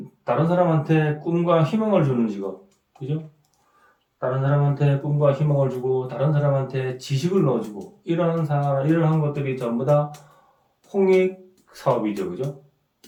다른 사람한테 꿈과 희망을 주는 직업, 그죠? 다른 사람한테 꿈과 희망을 주고 다른 사람한테 지식을 넣어주고 이러한 것들이 전부 다 홍익 사업이죠, 그죠?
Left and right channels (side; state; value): both; identical; correlation 1.00